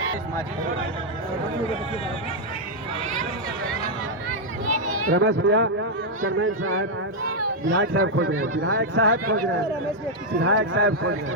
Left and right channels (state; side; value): normal; both; correlation -0.02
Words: रमेश भैया, चेयरमैन साहब, विधायक साहब खोज रहे हैं, विधायक साहब खोज रहे हैं, विधायक साहब खोज रहे